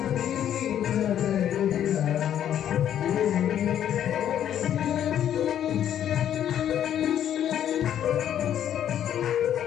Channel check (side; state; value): right; quieter; 10.3 dB